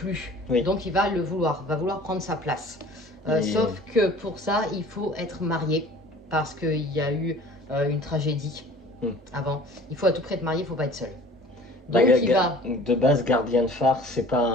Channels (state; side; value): normal; both; correlation 0.46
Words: Oui. Donc il va va vouloir prendre sa place. Et- Sauf que pour ça, il faut être marié, parce qu'il y a eu une tragédie avant. Il faut à tout prix être marié, il faut pas être seul. Donc il va... De base, gardien de phare, c'est pas